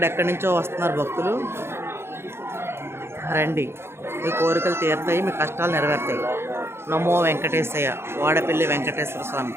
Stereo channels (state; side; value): late; left; 0.12 ms